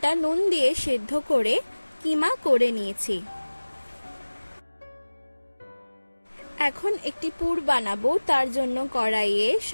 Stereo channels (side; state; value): both; inverted; correlation -1.00